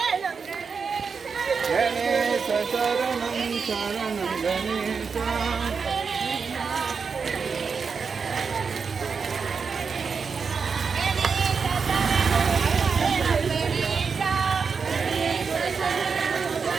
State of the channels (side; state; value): left; quieter; 5.5 dB